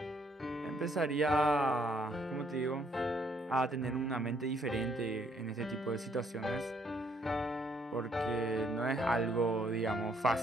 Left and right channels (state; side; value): normal; both; correlation 0.68